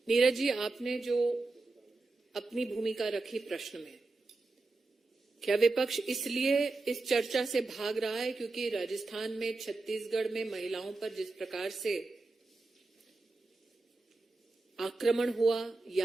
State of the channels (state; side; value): quieter; left; 3.4 dB